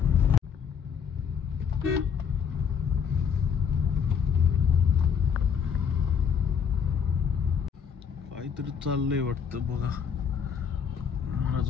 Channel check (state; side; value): quieter; right; 7.1 dB